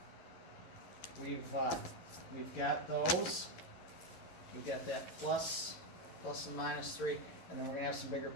we've got those. We've got that plus and -3, and then we're gonna have some bigger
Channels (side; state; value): right; late; 12 ms